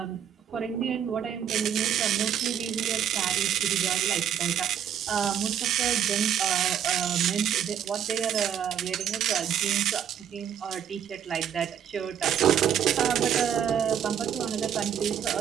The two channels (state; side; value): quieter; left; 9.0 dB